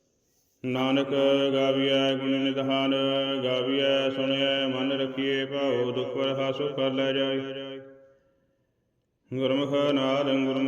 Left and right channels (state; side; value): identical; both; correlation 1.00